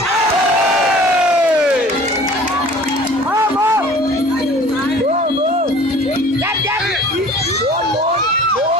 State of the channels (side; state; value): both; normal; correlation 0.47